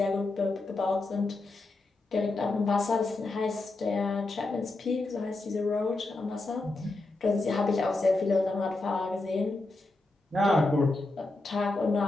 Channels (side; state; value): right; quieter; 3.1 dB